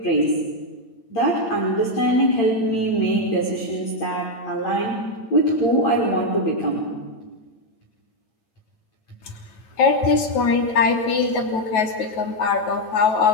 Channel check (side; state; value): right; late; 9.2 ms